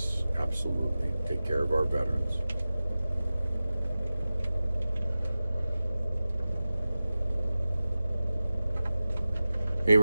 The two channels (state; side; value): inverted; both; correlation -0.95